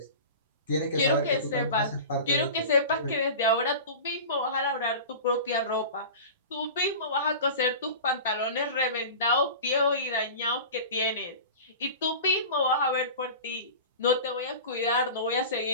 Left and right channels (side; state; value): both; inverted; correlation -0.34